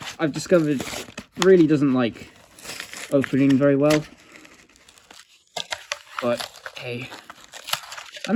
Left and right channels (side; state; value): both; identical; correlation 1.00